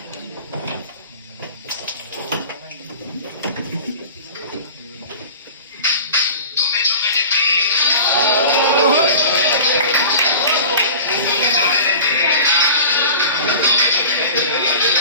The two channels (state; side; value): inverted; both; correlation -0.38